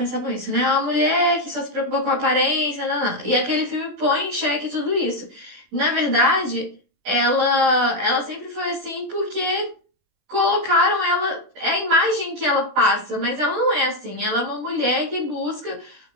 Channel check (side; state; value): left; late; 20 ms